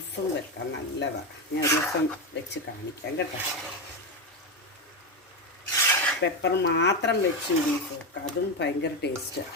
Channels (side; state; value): both; normal; correlation 0.12